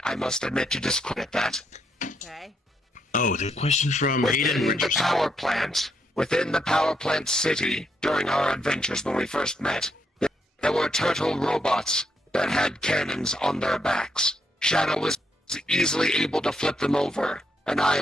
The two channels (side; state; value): both; normal; correlation 0.78